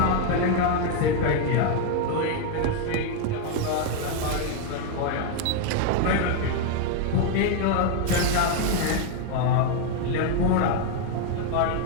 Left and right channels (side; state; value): both; different; correlation 0.01